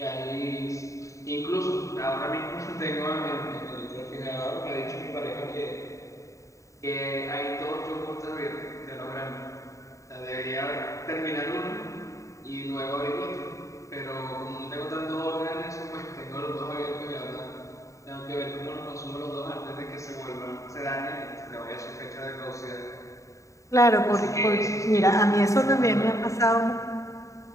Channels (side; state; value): right; late; 0.15 ms